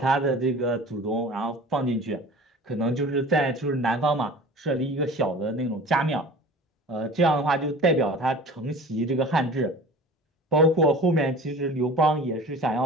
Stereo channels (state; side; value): normal; both; correlation 0.40